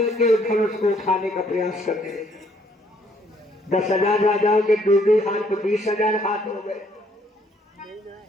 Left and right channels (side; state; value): both; normal; correlation 0.66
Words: धनुष को उठाने का प्रयास करते हैं। 10,000 राजाओं के 2 हाथ तो 20,000 हाथ हो गए।